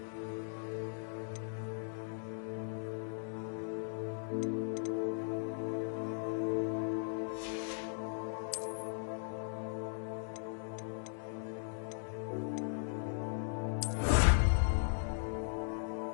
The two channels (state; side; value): silent; right; digital silence